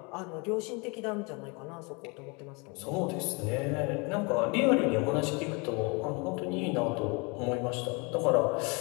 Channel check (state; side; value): quieter; right; 30.2 dB